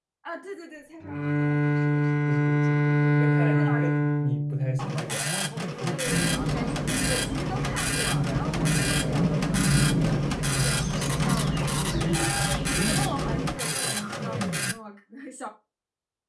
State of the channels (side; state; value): both; identical; correlation 1.00